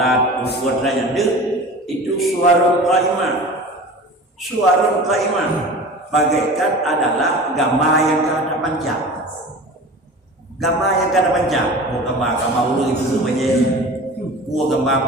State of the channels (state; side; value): normal; both; correlation 0.37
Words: puasa dan itu suwarun qaimah. Suwarun qaimah bagaikan adalah gambar yang kada panjang. Gambar yang kada panjang. Gambar ulu itu sebenarnya.